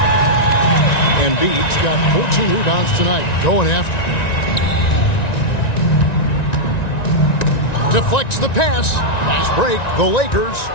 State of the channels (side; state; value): right; late; 1.9 ms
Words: Embiid's got 14 rebounds tonight. Going after. Deflects the pass. Fast break. The Lakers.